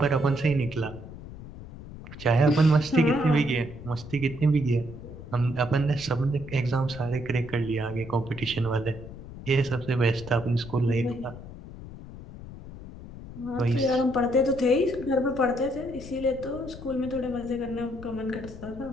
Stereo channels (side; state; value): left; noise; rumble, 14 dB below the sound